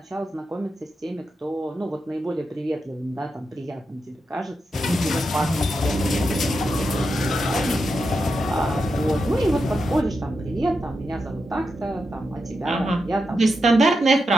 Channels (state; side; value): normal; both; correlation 0.86